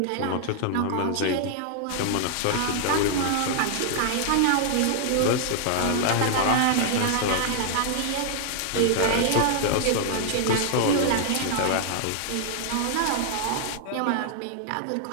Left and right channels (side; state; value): both; different; correlation 0.00